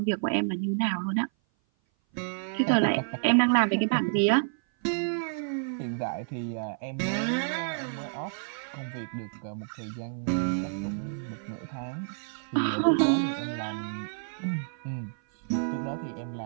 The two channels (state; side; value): silent; left; 56 dB below the other